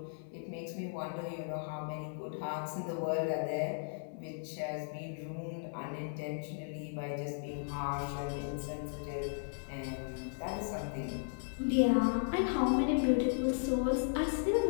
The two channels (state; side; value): silent; right; digital silence